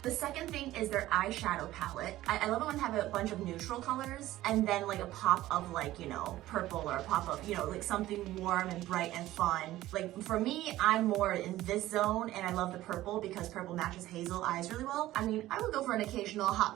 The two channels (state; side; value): quieter; left; 15.5 dB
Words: The second thing is their eyeshadow palette. I love it when they have a bunch of neutral colors and then like a pop of like, you know, purple or a pop of, you know, like something warm and bright and fun. Like for me, I'm more in this zone and I love the purple because purple matches hazel eyes really well. I mean, I would go for an occasional hot